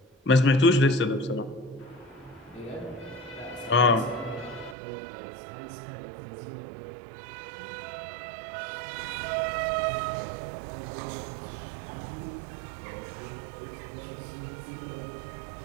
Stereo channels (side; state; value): left; drops out; at 4.8 s